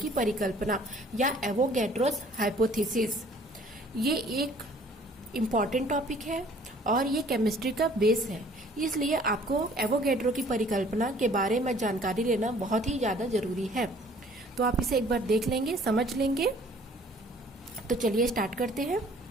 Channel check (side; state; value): both; normal; correlation 0.55